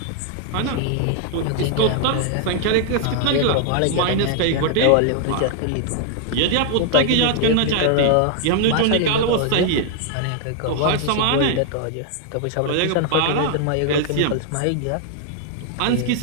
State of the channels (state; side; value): different; both; correlation 0.00